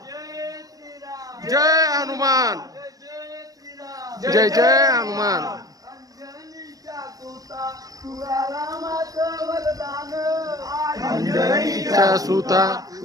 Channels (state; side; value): late; left; 0.17 ms